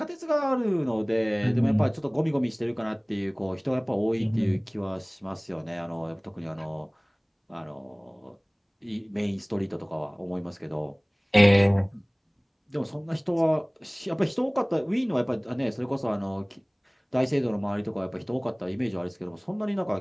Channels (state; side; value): identical; both; correlation 1.00